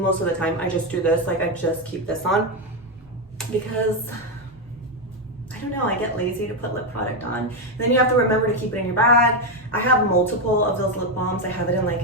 of the time, I just do this. Like I just keep this on because I don't know, I get lazy to put lip product on. And then you have to remember to keep it in your bag. I have multiple of those lip balms. I have it in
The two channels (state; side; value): normal; both; correlation 0.07